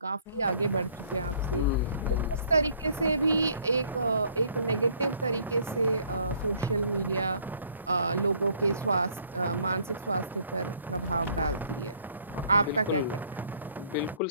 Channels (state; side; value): inverted; both; correlation -0.60